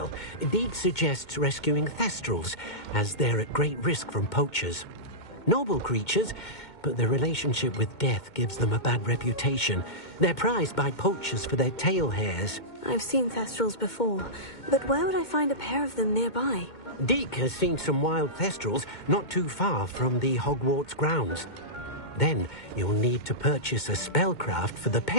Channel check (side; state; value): right; late; 2.2 ms